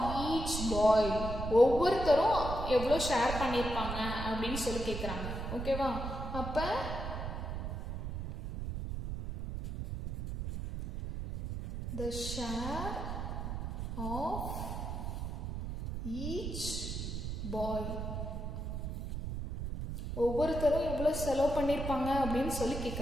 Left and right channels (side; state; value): right; noise; rumble, 5 dB below the sound